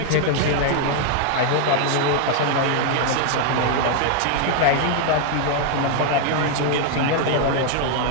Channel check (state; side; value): different; both; correlation 0.00